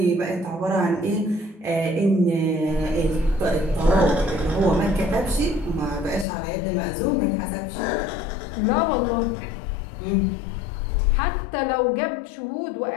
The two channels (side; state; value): right; drops out; at 6.2 s